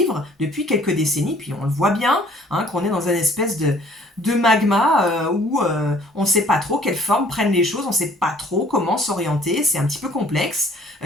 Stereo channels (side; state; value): both; normal; correlation 0.56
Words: depuis quelques décennies, puis on le voit bien, hein, qu'on est dans une espèce de magma où on ne sait pas trop quelle forme prennent les choses, on ne sait pas trop comment s'orienter, c'est un petit peu complexe,